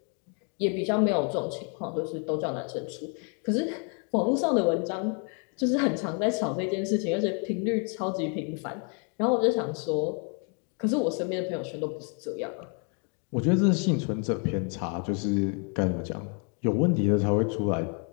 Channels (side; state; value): right; quieter; 39.3 dB